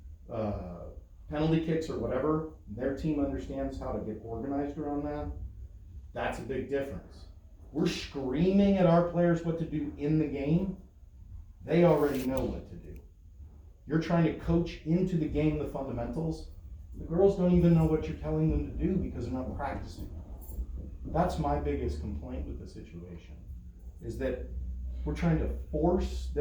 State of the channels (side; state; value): both; identical; correlation 1.00